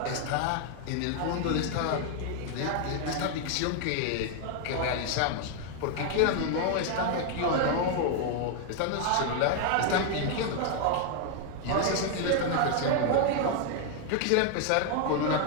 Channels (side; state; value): both; different; correlation 0.00